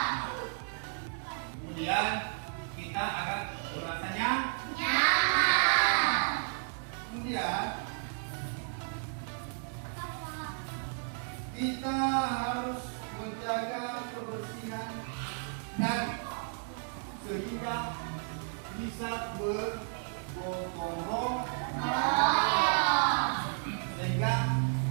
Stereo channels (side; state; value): left; silent; 56 dB below the other